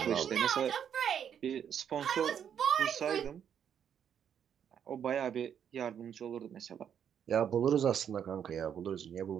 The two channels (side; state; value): left; quieter; 8.6 dB